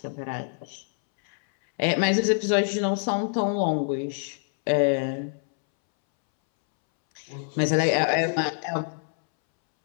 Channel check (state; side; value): silent; right; 61 dB below the other